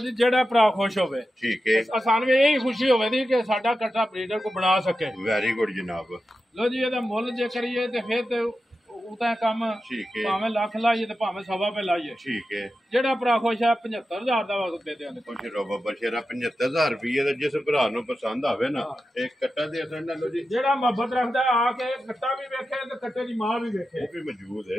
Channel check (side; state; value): both; normal; correlation 0.91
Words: ਜੀ ਜਿਹੜਾ ਭਰਾ ਖੁਸ਼ ਹੋਵੇ ਠੀਕ ਹੈ ਆਸਾਨ ਵੀ ਇਹੀ ਖੁਸ਼ੀ ਹੋਵੇ ਦੀ ਕਿ ਸਾਡਾ ਕੱਟਾ ਬਰੀਡਰ ਕੋ ਬਣਾ ਸਕੇ। ਵੈਰੀ ਗੁੱਡ ਜਨਾਬ ਲੋ ਜੀ ਇਹਦਾ ਮੁੱਲ ਜੇ ਕਰੀਏ ਤੇ ਫਿਰ ਤੇ ਉਹ ਤਾਂ ਕੰਮ ਠੀਕ ਹੈ ਭਾਵੇਂ ਲੱਖ ਲਾਈਏ ਤੇ ਭਾਵੇਂ 1.25 ਲਾਈਏ। ਠੀਕ ਹੈ ਜਿਹੜਾ ਭਰਾ ਖੁਸ਼ ਹੈ 75,000 ਦਾ ਦੇ ਦਿਆਂਗੇ। ਕੁਛ ਰੋਬਾ ਬਸ਼ੇਰਾ 75,000 ਰੁਪਏ ਦਾ ਜਿਸ ਭਰਾ ਨੂੰ ਪਸੰਦ ਆਵੇ ਨਾ ਇਹ ਕੱਟਾ ਦੇ ਸਕਣਾ ਲੋ ਜੀ ਜਿਹੜਾ ਮੁਹੱਬਤ ਰੱਖਦਾ ਆ ਕੇ ਕੱਟਾ ਵੀ ਵੇਖੇ ਤੇ ਕੱਟੇ ਦੀ ਮਾਂ ਵੀ ਵੇਖੇ ਉਹ ਵੀ ਮੌਜੂਦ